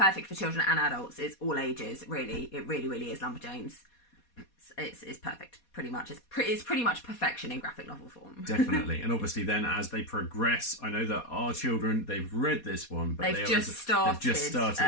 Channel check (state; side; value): late; right; 4.2 ms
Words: for children and adults. It's all ages, really. It really is Lumberjanes. It's perfect, pretty much. It's pretty much perfection in graphic novel form. Definitely. And obviously then as they progress, I know that our children, they've read this one, but they've just started